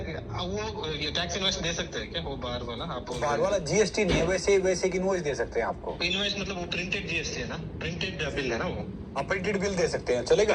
वो ये टैक्स इनवॉइस दे सकते हैं क्या वो बाहर वाला. आप बाहर वाला जीएसटी नहीं है वैसे की इनवॉइस दे सकते हैं आपको. इनवॉइस मतलब वो प्रिंटेड जीएसटी है ना, प्रिंटेड बिल है ना वो. आप प्रिंटेड बिल दे सकते हैं चलेगा.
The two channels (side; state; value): both; identical; correlation 1.00